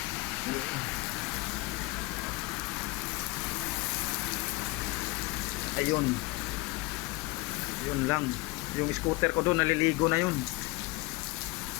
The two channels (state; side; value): quieter; right; 22.7 dB